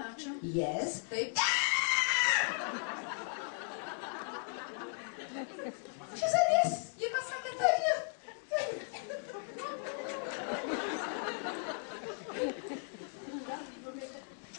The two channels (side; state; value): right; silent; 53 dB below the other